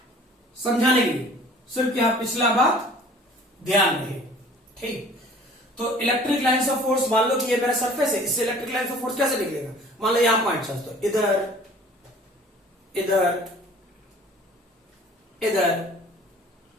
समझाने के लिए सिर्फ यहां पिछला बात ध्यान रहे। ठीक, तो इलेक्ट्रिक लाइन्स ऑफ फोर्स, मान लो कि ये मेरा सरफेस है, इससे इलेक्ट्रिक लाइन्स ऑफ फोर्स कैसे निकलेगा। मान लो यहां पॉइंट चार्ज, तो इधर इधर इधर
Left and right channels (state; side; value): normal; both; correlation 0.50